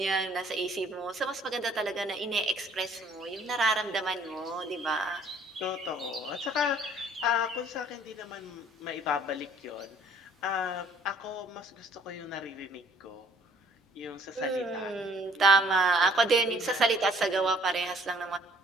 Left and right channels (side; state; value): both; normal; correlation 0.59